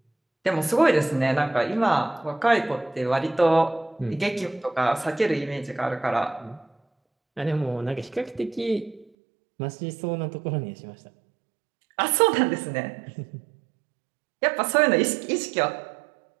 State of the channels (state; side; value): drops out; left; at 9.1 s